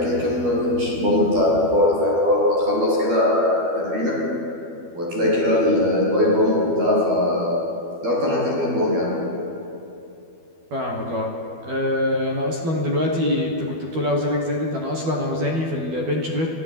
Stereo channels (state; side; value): late; left; 12 ms